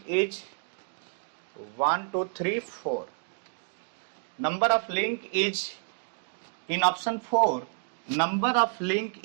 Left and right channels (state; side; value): silent; left; digital silence